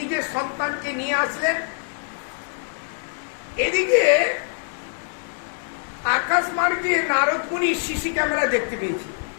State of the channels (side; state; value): right; silent; 63 dB below the other